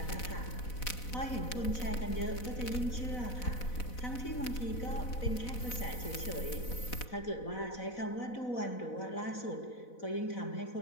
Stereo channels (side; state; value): right; late; 4.0 ms